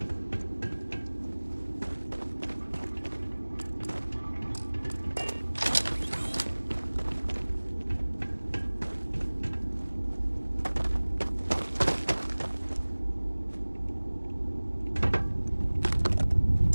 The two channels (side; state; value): both; inverted; correlation -1.00